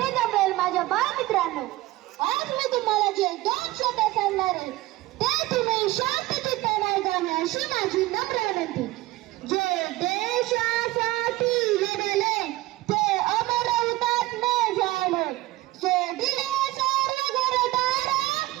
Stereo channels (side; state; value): left; quieter; 18.1 dB